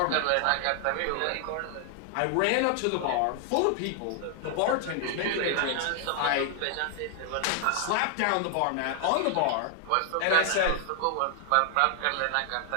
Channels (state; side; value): different; both; correlation 0.00